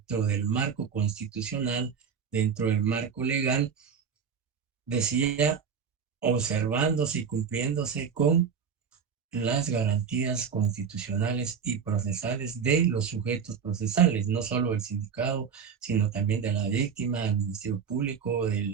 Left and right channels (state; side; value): quieter; left; 6.7 dB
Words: del marco constitucional, dentro del marco legal, decía, observándose y cumpliéndose con las garantías constitucionales y procesales de los sujetos procesales, no solo del sindicado, sino también de la víctima, del Ministerio Público,